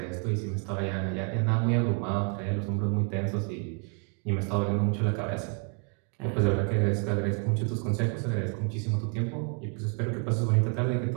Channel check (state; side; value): quieter; left; 38.0 dB